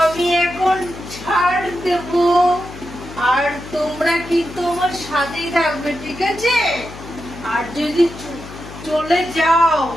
আমি এখন ছাড় দেব, আর তোমরা কিন্তু আমার সাথেই থাকবে, ঠিক আছে? আর যদি চলে যাও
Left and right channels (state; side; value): noise; left; hum, 15 dB below the sound